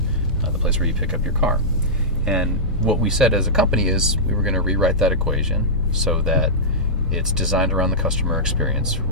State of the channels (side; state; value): both; normal; correlation -0.14